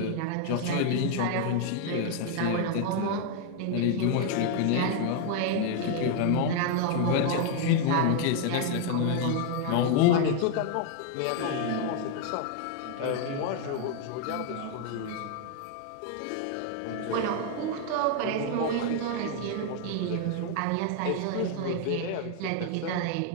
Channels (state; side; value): different; both; correlation 0.00